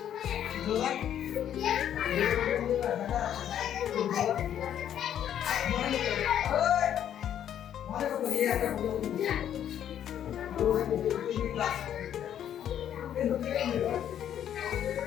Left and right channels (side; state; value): right; quieter; 10.1 dB